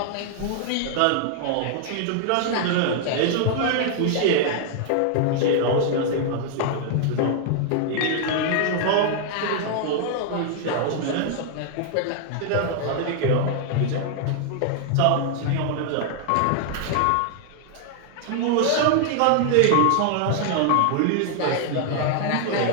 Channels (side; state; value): both; different; correlation 0.00